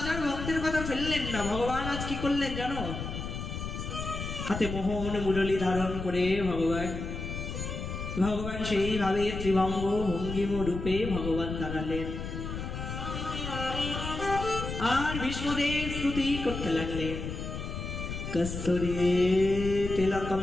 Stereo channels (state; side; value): noise; left; rumble, 6 dB below the sound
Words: আর ভক্তের কথা ফেললেন না। ভগবান আজ কি করলেন জানো, হাতে মোহন মুরলী ধারণ করে ভগবান সেইভাবে ত্রিভঙ্গ ভঙ্গিম রূপে ভগবান দাঁড়ালেন, আর ভীষ্মদেব স্তুতি করতে লাগলেন। কস্তুরী তিলকম